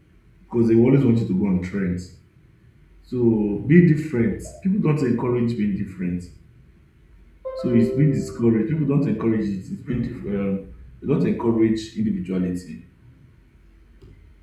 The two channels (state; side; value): identical; both; correlation 1.00